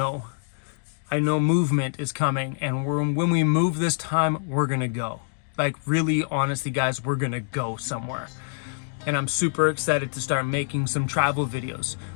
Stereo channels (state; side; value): silent; right; 61 dB below the other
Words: I know movement is coming, and when we move this time, we're gonna go. Like, really, honestly, guys, we're gonna go somewhere. And I'm super excited to start making some travel videos